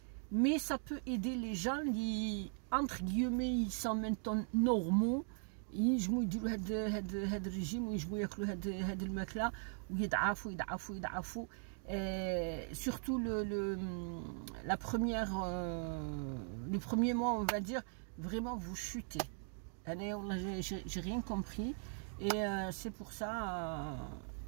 mais ça peut aider les gens qui entre guillemets ils sont maintenant normaux ينجموا يديروا هاد الرجيم وينجموا ياكلوا هاد الماكله ويضعفوا surtout la première les premiers mois on va dire vraiment vous chutez. J'ai rien compris et c'est pour ça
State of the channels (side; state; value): left; silent; 51 dB below the other